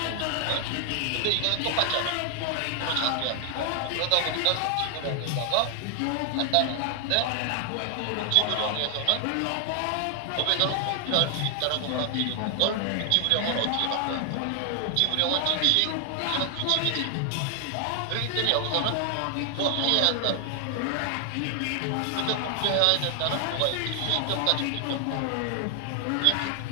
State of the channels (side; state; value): both; different; correlation 0.00